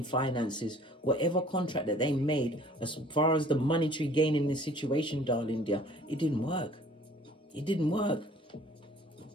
finances, whatever contract that they made as far as the monetary gain in this situation, darling dear, it didn't work. It didn't work.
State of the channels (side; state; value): both; normal; correlation 0.53